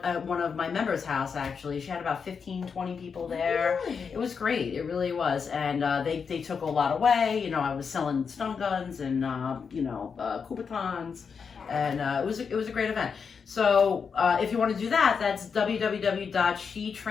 at one of my members' house, actually. She had about 15, 20 people there. Really? It was great. It really was. And they took a lot away. You know, I was selling stun guns and, Kubotans. And it was a great event. So if you want to do that, that's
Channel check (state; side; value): quieter; right; 6.0 dB